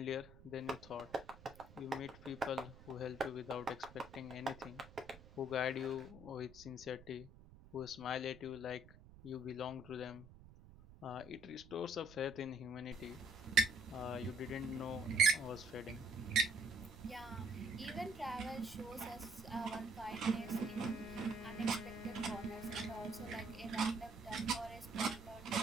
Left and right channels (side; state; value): right; noise; rumble, 19 dB below the sound